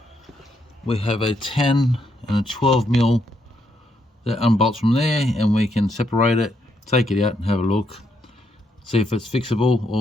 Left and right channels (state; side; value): normal; both; correlation 0.77